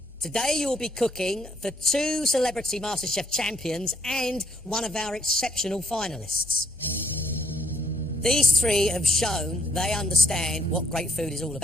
Today you will be cooking for 2 celebrity MasterChef champions and one of our exceptional finalists. These 3 have shown they understand what great food is all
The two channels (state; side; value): normal; both; correlation 0.68